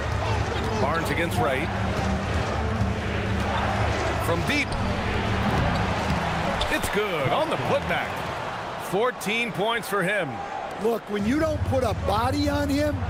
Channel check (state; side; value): identical; both; correlation 1.00